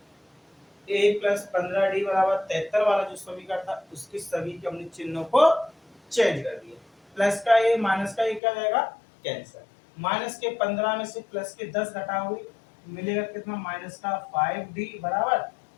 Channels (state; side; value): drops out; right; at 8.4 s